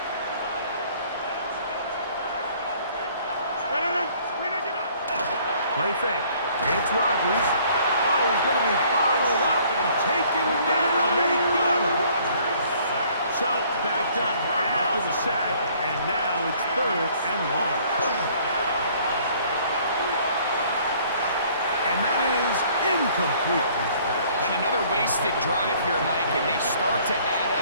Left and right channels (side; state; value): both; inverted; correlation -0.58